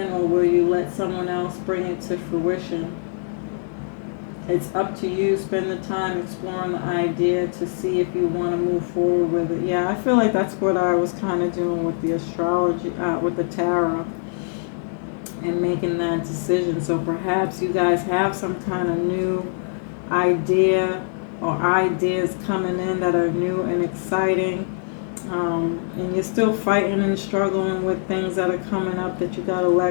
or will you let someone else bring it to fruition? It's up to you. Spend the time exploring the idea to see if you want to move forward with it. Yeah, I feel like that's what I was kind of doing with the astrology, with the tarot, and making that decision. So perhaps you guys have some kind of new idea or ideas coming in that are new and exciting. And you're still fighting and struggling with things that are coming up that you got to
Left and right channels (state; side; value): silent; right; 64 dB below the other